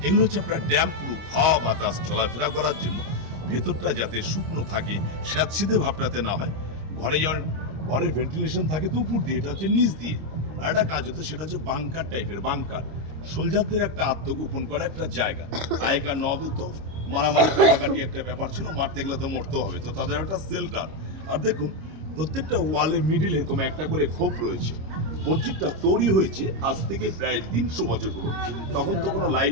এগুলো হচ্ছে আপনার ড্যাম প্রুফ, হাওয়া বাতাস চলাফেরা করার জন্য, ভেতরটা যাতে শুকনো থাকে, স্যাঁতসিধে ভাবটাতে না হয়। ঘরে যেমন ঘরের ভেন্টিলেশন থাকে তো উপর দিয়ে, এটা হচ্ছে নিচ দিয়ে। আর একটা কাজ হতো, সেটা হচ্ছে বাংকার টাইপের। বাংকার সোলজারদের একটা আত্মগোপন করা একটা জায়গা। আগেকার নবাব তো মারামারি কাটাকাটি একটা ব্যাপার ছিল, মারতে গেলে তো মরতে হবে, তো তাদের একটা সেল্টার। আর দেখুন প্রত্যেকটা ওয়ালের মিডিলে এরকম একটা করে খোপ রয়েছে। মসজিদটা তৈরি হয়েছে আজ থেকে প্রায় 300 বছর পুরো। তখন তো কোনো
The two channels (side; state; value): left; late; 26 ms